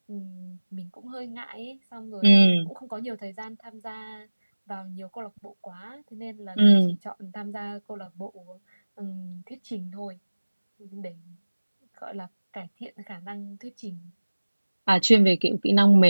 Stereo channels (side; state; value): both; inverted; correlation -1.00